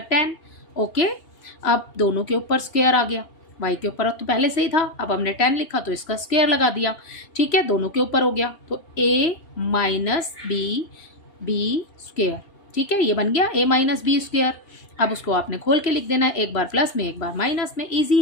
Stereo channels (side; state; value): right; late; 2.8 ms